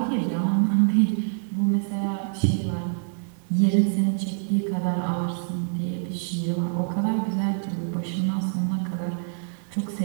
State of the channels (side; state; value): left; silent; digital silence